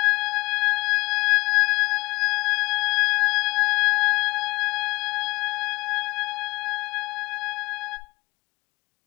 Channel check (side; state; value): right; quieter; 22.5 dB